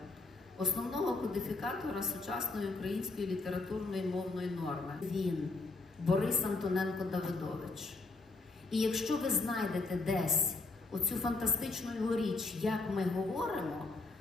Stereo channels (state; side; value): quieter; right; 3.5 dB